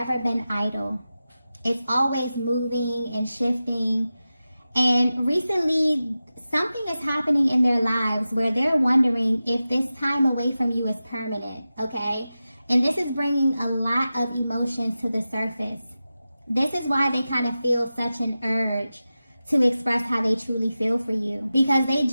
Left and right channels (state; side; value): inverted; both; correlation -0.94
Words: been idle. It's always moving and shifting. And recently, something is happening in their lives where they're wondering if this time away from you is permanent, okay? And this is bringing a lot of emotions to the surface. This is why they kind of feel such an urge to express how they truly feel for you, because they